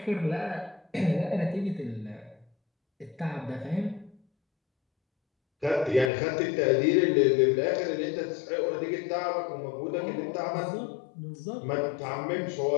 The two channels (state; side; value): drops out; right; at 6.1 s